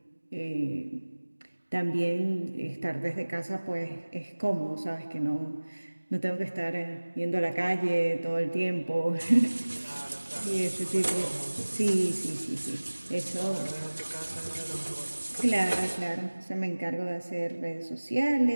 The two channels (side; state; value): both; inverted; correlation -1.00